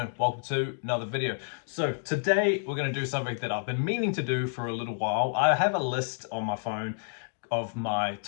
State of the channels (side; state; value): right; silent; digital silence